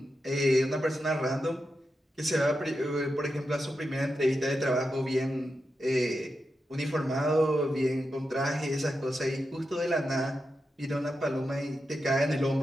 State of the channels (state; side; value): normal; both; correlation 0.88